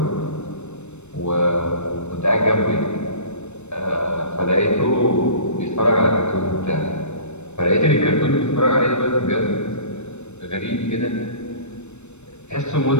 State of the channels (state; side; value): late; right; 0.82 ms